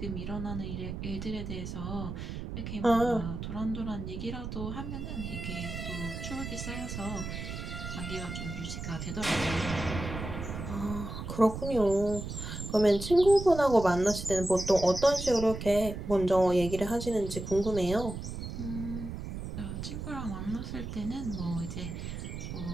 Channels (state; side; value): noise; right; rumble, 7 dB below the sound